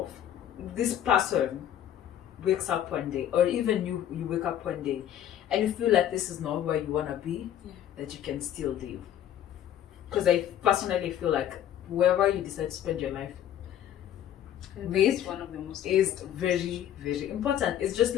this person wakes up one day, or even you wake up one day and you feel like this is not where you want to be, that you can still live. Because I personally feel like whoever you decide to spend your life with one of the most is very, very important. It's just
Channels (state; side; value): quieter; right; 10.8 dB